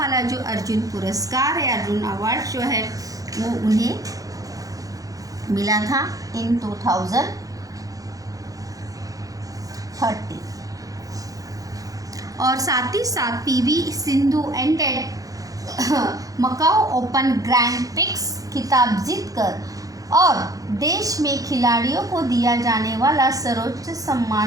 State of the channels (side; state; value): left; late; 0.17 ms